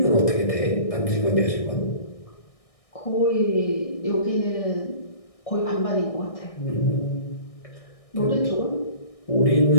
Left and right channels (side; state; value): right; late; 1.6 ms